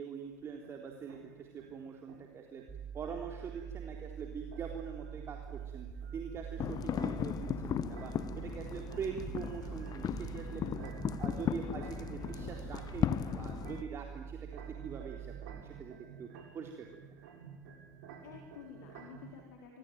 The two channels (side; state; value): both; normal; correlation 0.54